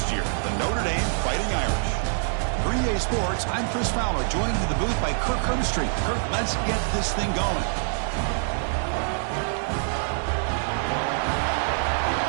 year, the Notre Dame Fighting Irish. For EA Sports, I'm Chris Fowler, joined in the booth by Kirk Hermstreet. Kirk, let's get this thing going.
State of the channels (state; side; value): silent; left; 62 dB below the other